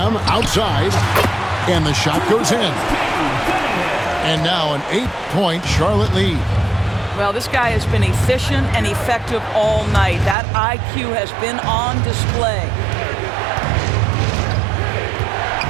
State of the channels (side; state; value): left; drops out; at 10.4 s